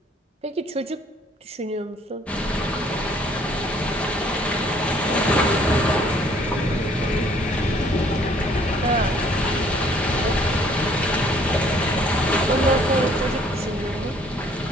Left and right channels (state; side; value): normal; both; correlation 0.60